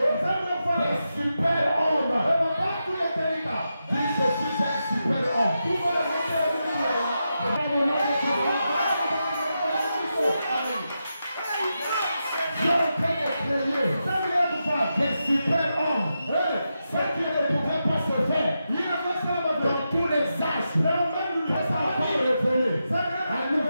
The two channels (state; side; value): inverted; both; correlation -0.88